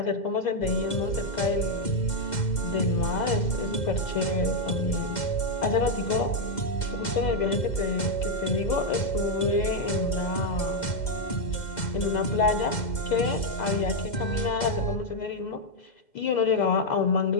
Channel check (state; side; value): late; right; 2.1 ms